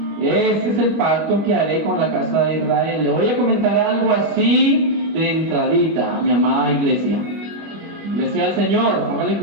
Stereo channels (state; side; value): late; left; 25 ms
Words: Este es el pacto que haré con la casa de Israel. Le voy a comentar algo así de entradita, mi amada iglesia. Iglesia del Señor, póngale